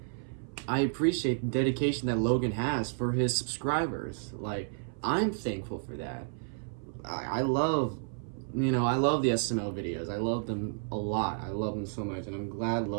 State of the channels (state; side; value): silent; left; 55 dB below the other